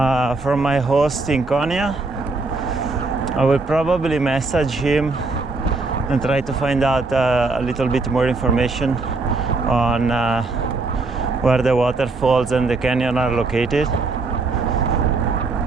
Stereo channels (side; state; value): left; quieter; 3.7 dB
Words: from my host in Konya. I will probably message him and try to find out a little bit more information on where the waterfalls and the canyon are located.